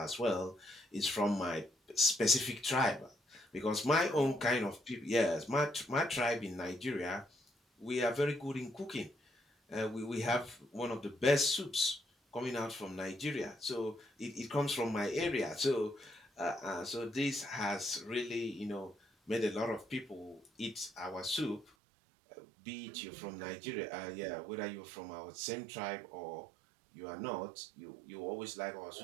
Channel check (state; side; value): drops out; left; at 21.7 s